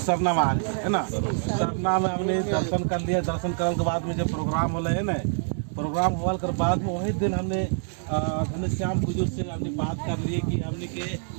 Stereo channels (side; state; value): left; silent; 61 dB below the other